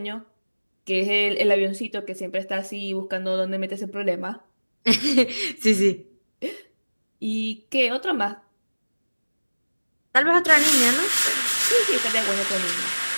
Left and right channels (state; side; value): inverted; both; correlation -1.00